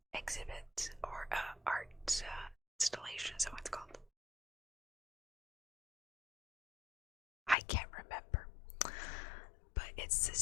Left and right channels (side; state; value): right; drops out; at 7.6 s